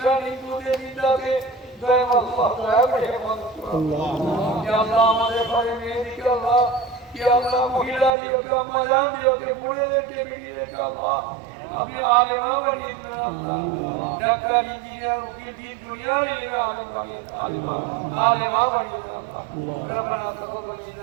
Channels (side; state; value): left; drops out; at 8.1 s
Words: हिंदू के निंदा के दया अल्लाह दया रहमत अल्लाह या अल्लाह हमारे भाई मेहंदी के अल्लाह या अल्लाह महिला दियो के अम्मा जान दियो के बूढ़े के बेटी के अल्लाह अपने आलिमा बनी अल्लाह डॉक्टर इंजीनियर वकील की दुनिया ही आलिमा बनी अल्लाह ربنا تقبل